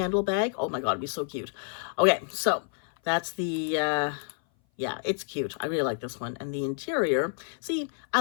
bag? Oh my God, it'd be so cute. Okay, so that's the, yeah, it's cute. I really like this one. And the interior, see,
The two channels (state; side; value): silent; right; 57 dB below the other